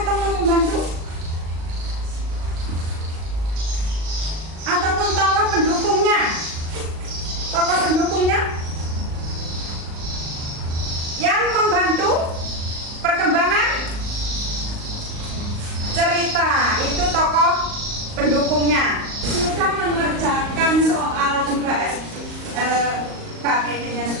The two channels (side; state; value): left; late; 38 ms